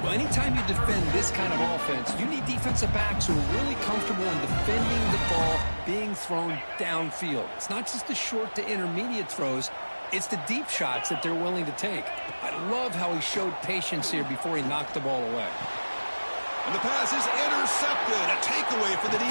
Well, anytime you defend this kind of offense, you need defensive backs who are really comfortable in defending the ball being thrown downfield. It's not just the short to intermediate throws, it's the deep shots that they're willing to take. I love how he showed patience here before he knocked the ball away. And the pass is intercepted. A takeaway for the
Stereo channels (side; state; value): both; inverted; correlation -1.00